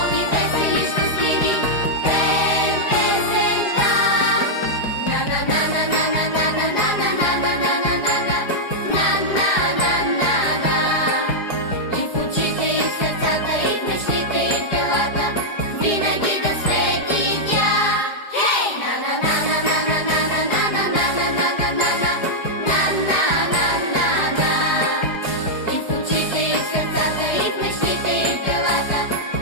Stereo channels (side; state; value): right; late; 4.9 ms